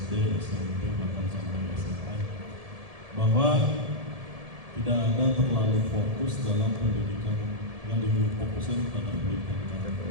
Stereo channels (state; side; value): late; left; 1.7 ms